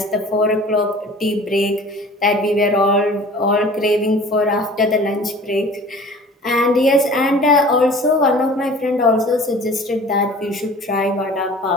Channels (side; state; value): both; normal; correlation 0.45